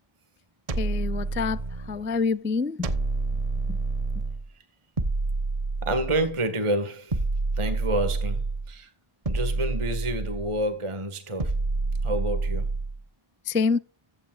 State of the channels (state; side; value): late; left; 1.4 ms